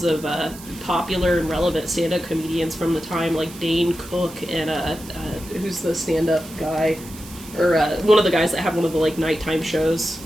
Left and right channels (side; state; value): right; noise; hiss, 17 dB below the sound